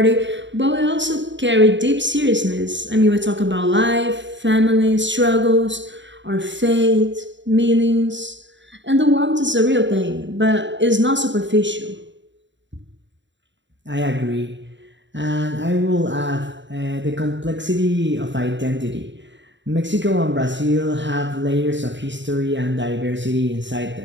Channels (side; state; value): left; late; 0.54 ms